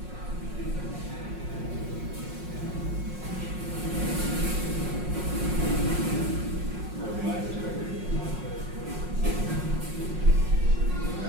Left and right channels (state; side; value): late; left; 5.5 ms